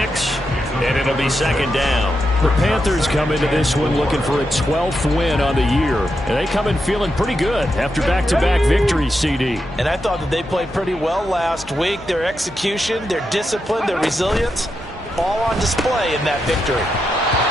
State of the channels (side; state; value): both; normal; correlation 0.86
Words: and it'll be 2nd down. The Panthers come into this one looking for a 12th win on the year. And they come in feeling pretty good after back-to-back victories, CD. And I thought that they played pretty well last week. Their execution, their discipline, their resilience, all on display in that victory.